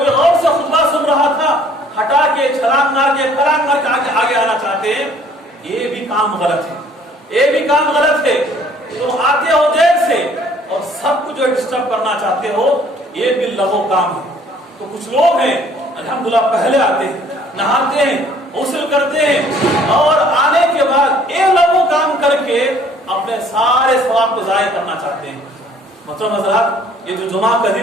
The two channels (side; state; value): both; normal; correlation 0.58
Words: غور سے خطبہ سن رہا تھا، ہٹا کے چھلانگ مار کے پھلانگ مار کے آگے آنا چاہتے ہیں، یہ بھی کام غلط ہے، یہ بھی کام غلط ہے۔ تم آتے ہو دیر سے اور سب کو جو ڈسٹرب کرنا چاہتے ہو، یہ بھی لغو کام ہے۔ تو کچھ لوگ ہیں الحمدللہ پہلے آتے ہیں، نہاتے ہیں، غسل کرتے ہیں اور آنے کے بعد یہ لغو کام کر کے اپنے سارے ثواب کو ضائع کرنا چاہتے ہیں۔ محترم حضرات، یہ جو جمعہ کا